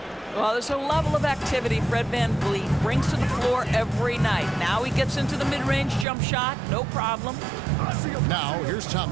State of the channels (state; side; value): drops out; left; at 6.1 s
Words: Well, there's a level of activity Fred Van Vliet brings to the floor every night. Now he gets into the mid-range jump shot, no problem. Now here's